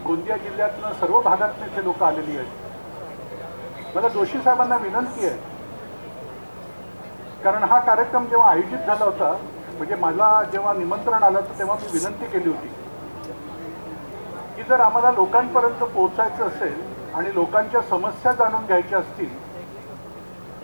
गोंदिया जिल्ह्यातनं सर्व भागातून इथे लोक आलेली आहेत. मला जोशी साहेबांना विनंती आहे, कारण हा कार्यक्रम जेव्हा आयोजित झाला होता, म्हणजे मला जेव्हा निमंत्रण आलं तर तेव्हा मी विनंती केली होती की जर आम्हाला लोकांपर्यंत पोहोचायचं असेल आणि लोकांच्या समस्या जाणून घ्यायच्या असतील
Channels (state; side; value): inverted; both; correlation -1.00